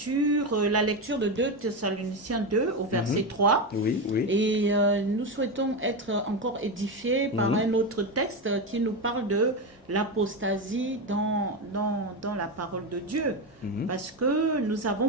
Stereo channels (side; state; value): both; normal; correlation 0.14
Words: la lecture de 2 Thessaloniciens 2 au verset 3. Oui. Et nous souhaitons être encore édifiés par un autre texte qui nous parle de l'apostasie dans la parole de Dieu. Parce que nous avons